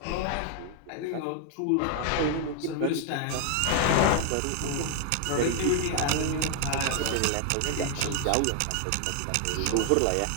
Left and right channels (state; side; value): different; both; correlation 0.00